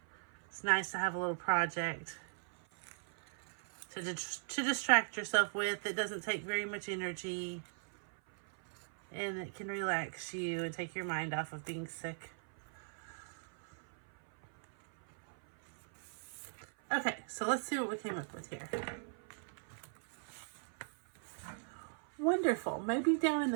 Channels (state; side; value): silent; left; 52 dB below the other